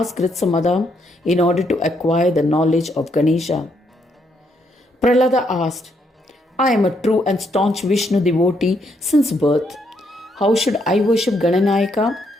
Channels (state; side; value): normal; both; correlation 0.75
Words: Gritsamada in order to acquire the knowledge of Ganesha. Prahlada asked, "I am a true and staunch Vishnu devotee since birth. How should I worship Gananayaka?